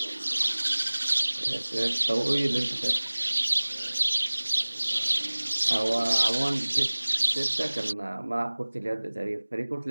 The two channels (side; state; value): both; inverted; correlation -1.00